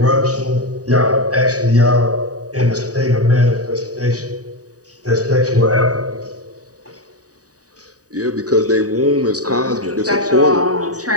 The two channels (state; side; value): late; left; 0.67 ms